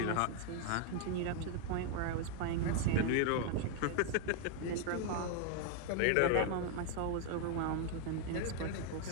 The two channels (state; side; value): different; both; correlation 0.01